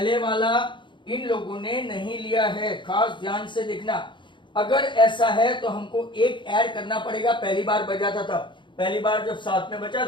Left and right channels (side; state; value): right; late; 0.23 ms